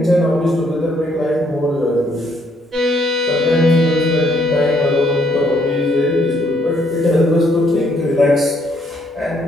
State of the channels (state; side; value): normal; both; correlation 0.69